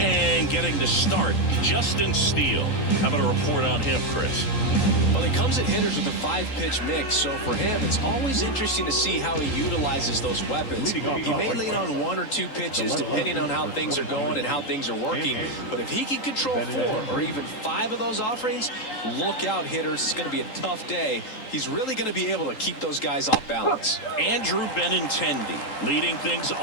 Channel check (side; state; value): right; late; 3.8 ms